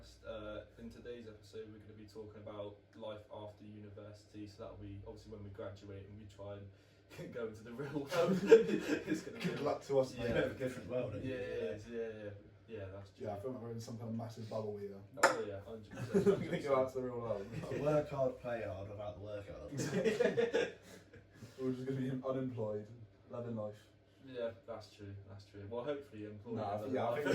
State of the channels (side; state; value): both; identical; correlation 1.00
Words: In today's episode we're going to be talking about life after university, so that'll be obviously when we graduate and we try and go into the real world. It's going to Good luck to us, mate. Yeah, a different world. Yeah, that's true. Yeah, I feel like we're in some kind of massive bubble here. Oh yeah, 100%. We're going to go out to the real world. Work hard, play hard, without the work hard. We're just going to be unemployed, loving life. Yeah, that's true. Well, hopefully employed. Nah, in yeah, I life.